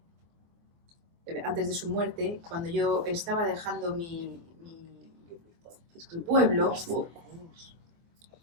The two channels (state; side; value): late; left; 24 ms